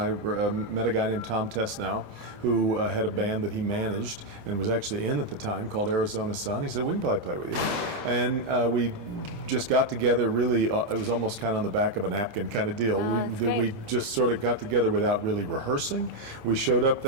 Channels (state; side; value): late; left; 28 ms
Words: met a guy named Tom Tesnow who had a band that he managed and was actually in at the time called Arizona Sun. He said, "We can probably play with you," and we just got together. Really, it was almost kind of on the back of a napkin kind of deal. We just sort of got together without really rehearsing. We showed up